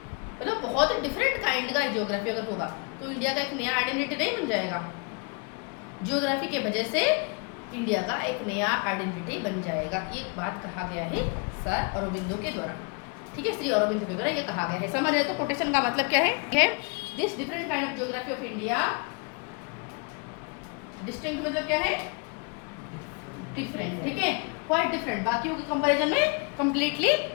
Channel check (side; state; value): right; quieter; 34.3 dB